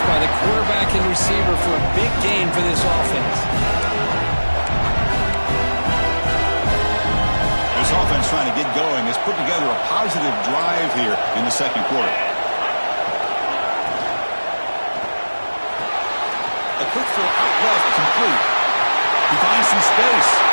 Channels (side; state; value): both; inverted; correlation -1.00